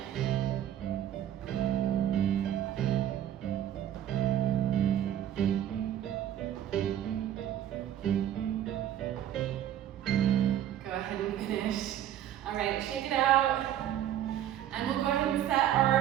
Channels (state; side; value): quieter; left; 11.1 dB